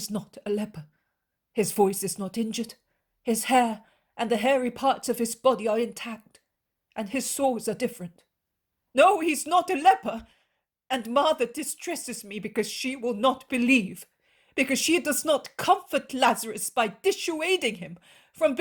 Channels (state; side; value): identical; both; correlation 1.00